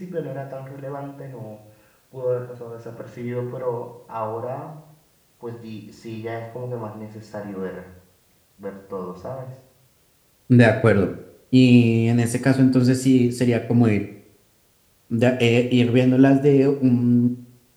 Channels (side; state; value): both; identical; correlation 1.00